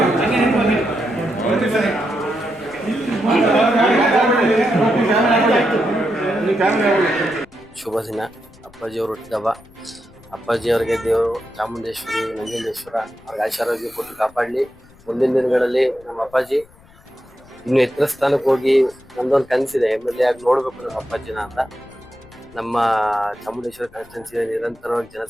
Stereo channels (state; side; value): noise; left; rumble, 26 dB below the sound